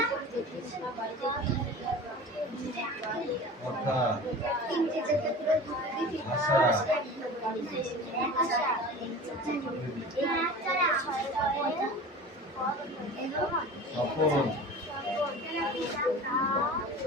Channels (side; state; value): both; normal; correlation 0.37